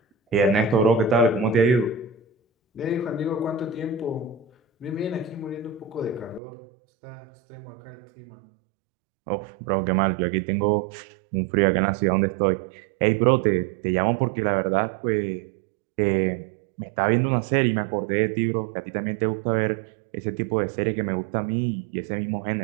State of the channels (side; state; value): left; drops out; at 6.4 s